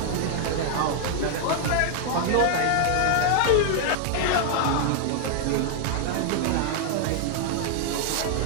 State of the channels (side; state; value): both; different; correlation -0.01